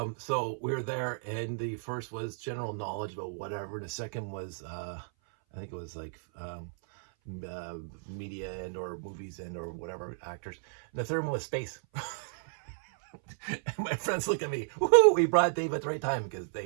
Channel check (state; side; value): silent; left; 56 dB below the other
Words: So we were there, and the first was general knowledge about whatever. And the second was, I think it was like media and or movies and or whatever, actors. And the third one was space. And my friends look at me, woohoo, we brought Dave at the right time, because